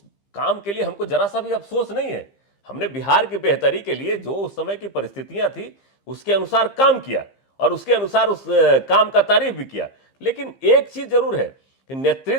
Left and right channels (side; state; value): right; late; 15 ms